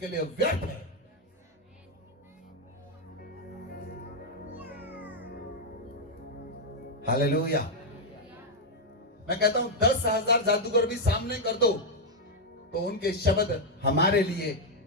लिए व्यर्थ है। हालेलुया। मैं कहता हूं 10,000 जादूगर भी सामने कर दो तो उनके शब्द हमारे लिए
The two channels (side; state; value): both; normal; correlation 0.00